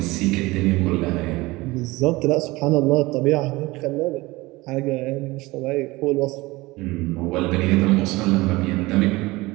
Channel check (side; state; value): left; quieter; 21.1 dB